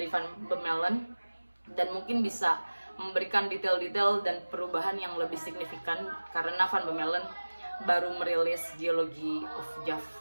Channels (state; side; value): inverted; both; correlation -1.00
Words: Van Bemmelen, dan mungkin bisa memberikan detail-detail dan perubahan yang lebih signifikan, karena Van Bemmelen baru merilis Geology of Java,